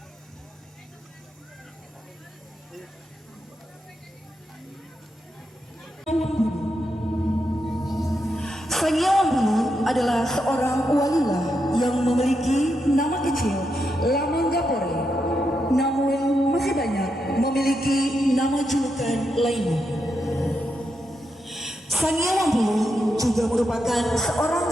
Sangyawang Bulu adalah seorang walilah yang memiliki nama kecil Lamanggapore, namun masih banyak memiliki nama julukan lainnya. Sangyawang Bulu juga merupakan seorang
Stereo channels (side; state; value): both; normal; correlation 0.84